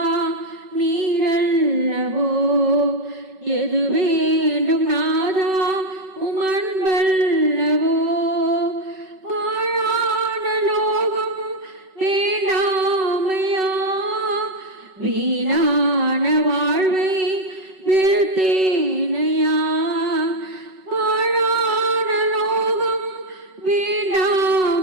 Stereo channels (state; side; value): late; left; 5.3 ms